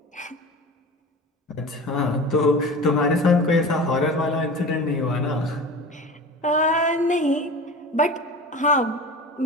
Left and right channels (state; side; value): normal; both; correlation 0.34